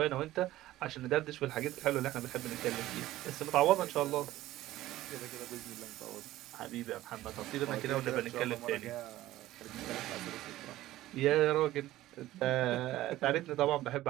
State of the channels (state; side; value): quieter; left; 15.5 dB